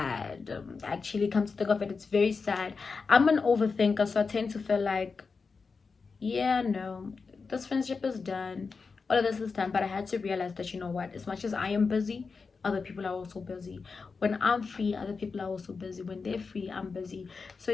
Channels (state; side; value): quieter; right; 4.8 dB